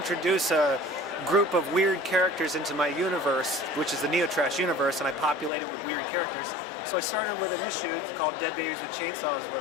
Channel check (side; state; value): right; drops out; at 5.5 s